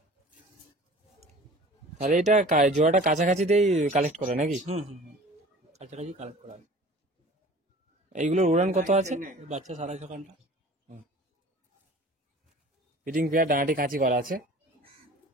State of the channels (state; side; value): normal; both; correlation 0.44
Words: তাহলে এটা জোড়াটা কাছাকাছিতেই কালেক্ট করে নাকি? কাছাকাছি কালেক্ট করা হবে। এইগুলোর উড়ান কত আছে? বাচ্চা 6.5 ঘন্টা। ফিটিং পেয়ার, ডানাটি কাঁচি করা আছে।